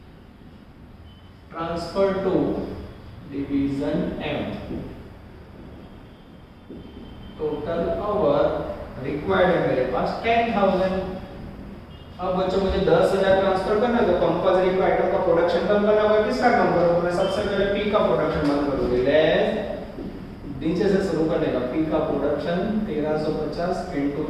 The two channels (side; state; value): both; identical; correlation 1.00